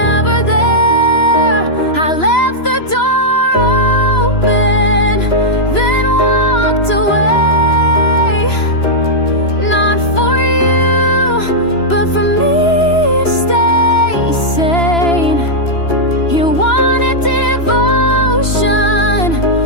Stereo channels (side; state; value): right; late; 3.0 ms